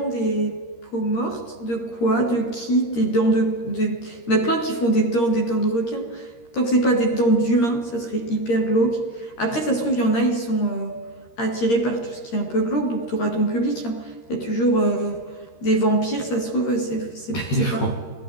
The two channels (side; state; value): right; late; 13 ms